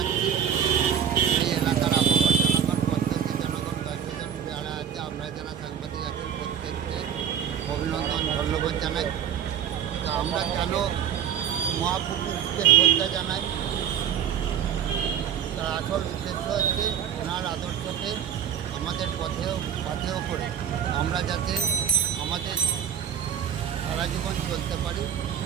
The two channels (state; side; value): quieter; left; 8.8 dB